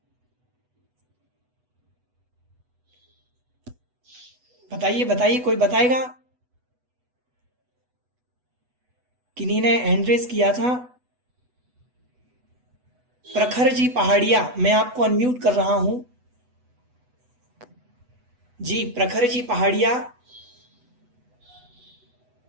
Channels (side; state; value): left; late; 8.1 ms